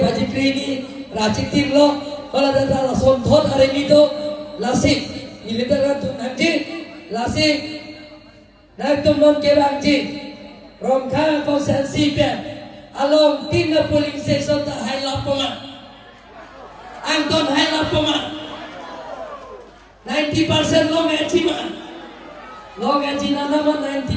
বাজি ক্ৰেনি ৰাজনীতিৰ লো Halda সন্ধত আৰেমিতো Lasik, militer tu nanti, lasik, nak tu non kebanci, rongka konsensi pe, along tina polling station tak hai lapoma, Anton hai lapoma, 90% long aji nana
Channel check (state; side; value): identical; both; correlation 1.00